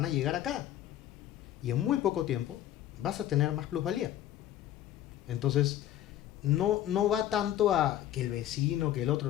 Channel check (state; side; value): quieter; right; 12.3 dB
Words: a llegar acá. Y en muy poco tiempo vas a tener más plusvalía. Entonces, no va tanto a que el vecino, que el